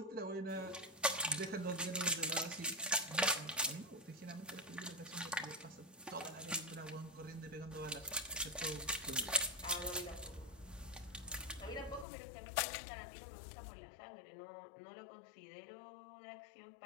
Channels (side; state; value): right; drops out; at 12.1 s